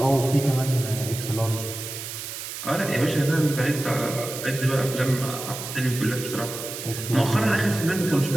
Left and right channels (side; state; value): right; noise; hiss, 8 dB below the sound